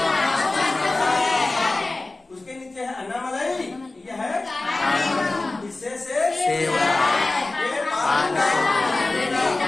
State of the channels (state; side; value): quieter; right; 3.1 dB